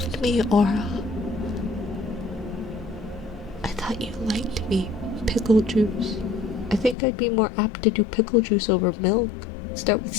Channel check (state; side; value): drops out; right; at 7.0 s